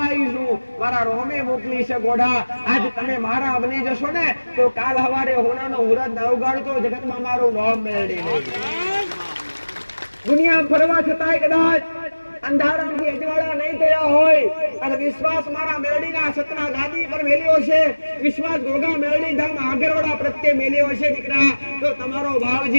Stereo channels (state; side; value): inverted; both; correlation -1.00